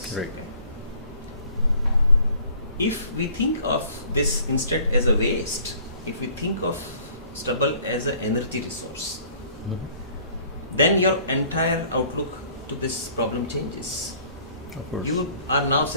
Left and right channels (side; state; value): both; inverted; correlation -0.55